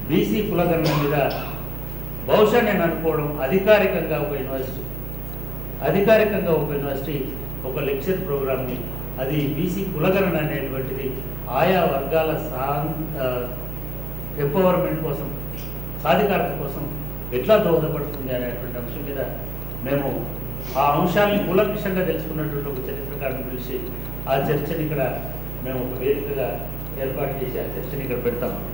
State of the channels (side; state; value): right; noise; hum, 6 dB below the sound